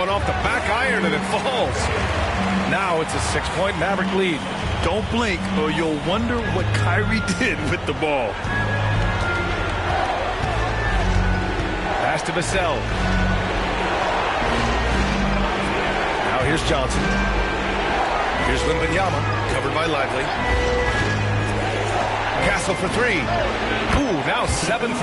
off the back iron and it falls. Now it's a 6-point Maverick lead. Don't blink or you'll wonder what Kyrie did with the ball. Pass to Vassell. Now here's Johnson. Here's Wembanyama, covered by Lively. Castle for 3. Ooh, now 7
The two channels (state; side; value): identical; both; correlation 1.00